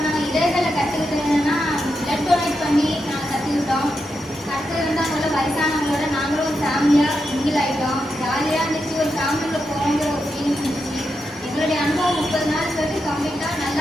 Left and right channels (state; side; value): normal; both; correlation 0.86